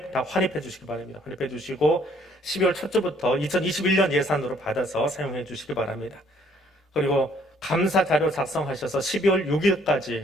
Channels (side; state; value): both; normal; correlation 0.63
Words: 다 환입해 주시기 바랍니다. 환입해 주시고 12월 첫 주부터 2021년 예산으로 받아서 사용해 주시기 바랍니다. 그리고 감사 자료 작성하셔서 12월